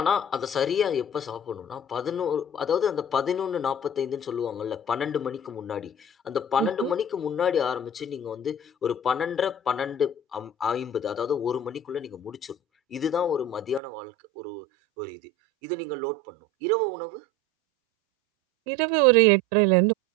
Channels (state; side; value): drops out; left; at 13.8 s